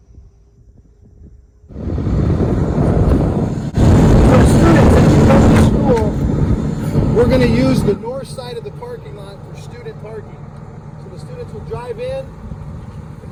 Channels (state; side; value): identical; both; correlation 1.00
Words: For students, as you come to school, we're going to use the north side of the parking lot for student parking. So the students will drive in, and